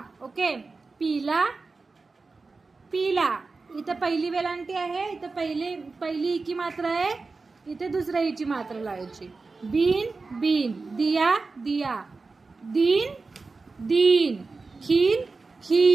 ओके. पीला पीला. इथे पहिली वेलांटी आहे, इथे पहिली की मात्रा आहे, इथे दुसऱ्या ईची मात्रा लावायची. बीन बीन, दिया दिया, दीन दीन, खील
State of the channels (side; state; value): left; quieter; 4.0 dB